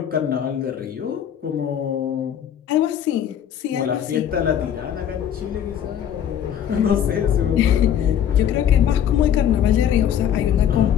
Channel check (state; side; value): quieter; right; 9.5 dB